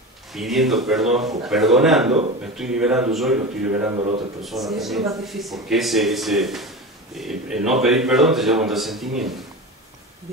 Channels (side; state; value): both; normal; correlation 0.27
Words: pidiendo perdón o perdonando, me estoy liberando yo y lo estoy liberando a la otra persona Sí, eso es también. lo más difícil. Porque el no pedir perdón te lleva a un resentimiento.